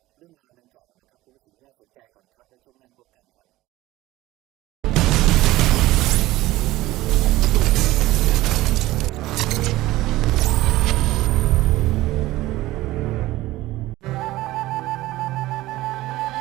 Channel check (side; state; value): left; quieter; 17.3 dB